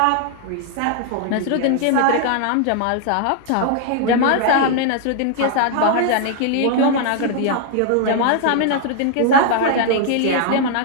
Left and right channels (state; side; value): different; both; correlation 0.00